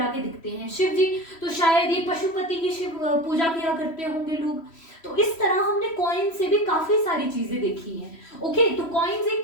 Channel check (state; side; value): late; right; 3.1 ms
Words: के दिखते हैं, शिव जी, तो शायद ये पशुपति की शिव पूजा किया करते होंगे लोग। तो इस तरह हमने कॉइन से भी काफी सारी चीजें देखी हैं। ओके तो कॉइन्स एक